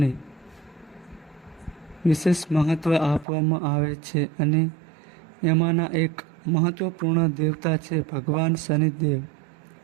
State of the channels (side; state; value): left; drops out; at 3.2 s